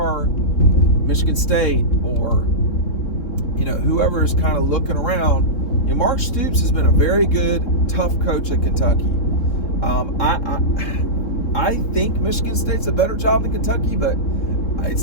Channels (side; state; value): right; late; 3.7 ms